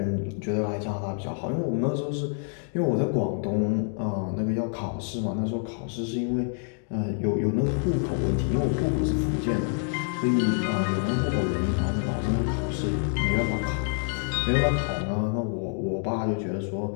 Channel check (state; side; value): silent; right; 56 dB below the other